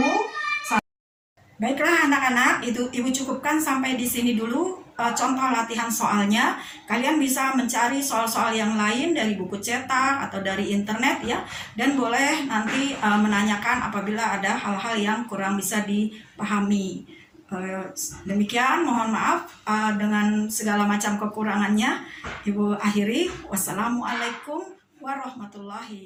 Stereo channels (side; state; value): both; identical; correlation 1.00